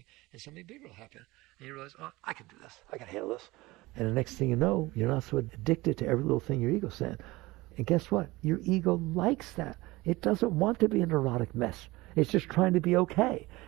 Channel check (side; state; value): left; quieter; 20.6 dB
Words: and something bigger will happen. And you realize, oh, I can do this. I can handle this. And the next thing you know, you're not so addicted to every little thing your ego said. And guess what? Your ego likes that. It doesn't want to be a neurotic mess. It's just trying to be okay.